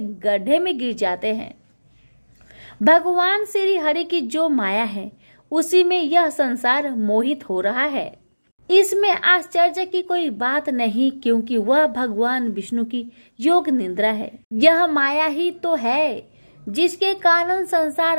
में गिर जाते हैं। भगवान श्री हरि की जो माया है, उसी में यह संसार मोहित हो रहा है। इसमें आश्चर्य की कोई बात नहीं, क्योंकि वह भगवान विष्णु की योग निद्रा है। यह माया ही तो है जिसके कारण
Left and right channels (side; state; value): both; inverted; correlation -1.00